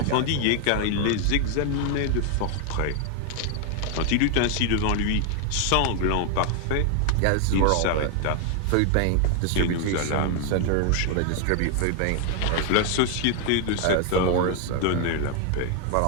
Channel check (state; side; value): different; both; correlation 0.00